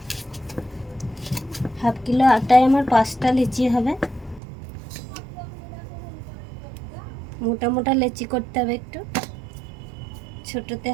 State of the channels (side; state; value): left; drops out; at 4.4 s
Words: হাফ কিলো আটায় আমার 5টা লেচি হবে। মোটা মোটা লেচি করতে হবে, একটু ছোটতে